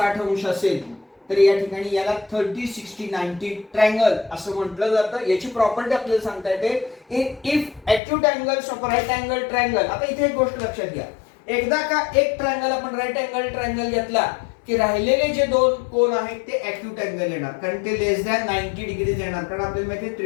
अंश असेल तर या ठिकाणी याला 30 60 90 ट्रायंगल असं म्हटलं जातं. याची प्रॉपर्टी आपल्याला सांगता येते if acute angles of right angle triangle. आता इथे एक गोष्ट लक्षात घ्या, एकदा का एक ट्रायंगल आपण राईट अँगल ट्रायंगल घेतला की राहिलेले जे दोन कोन आहेत ते ॲक्यूट अँगल येणार, कारण ते लेस दॅन 90 डिग्रीज येणार. कारण आपल्याला माहिती आहे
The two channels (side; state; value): right; drops out; at 8.0 s